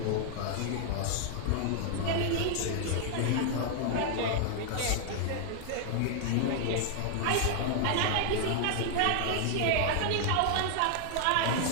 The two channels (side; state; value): both; different; correlation 0.00